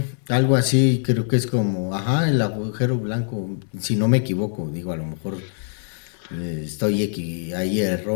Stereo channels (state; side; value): silent; right; 63 dB below the other